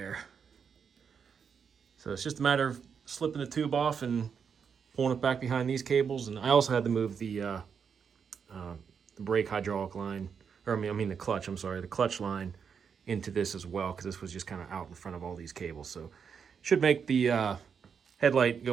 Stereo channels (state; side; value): quieter; left; 6.7 dB